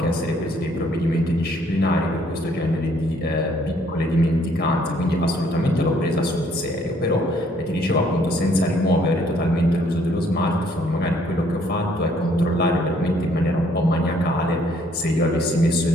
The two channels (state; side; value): normal; both; correlation 0.64